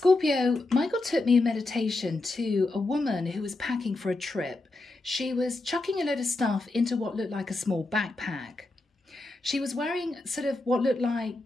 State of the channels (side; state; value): right; quieter; 3.0 dB